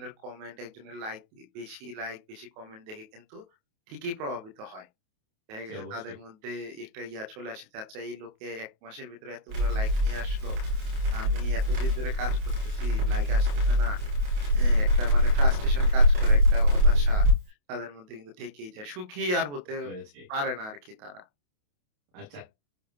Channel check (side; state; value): left; late; 28 ms